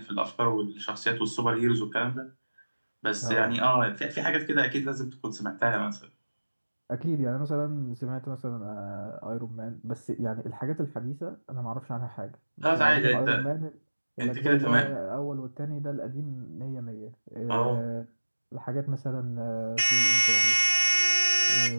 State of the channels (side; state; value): both; inverted; correlation -1.00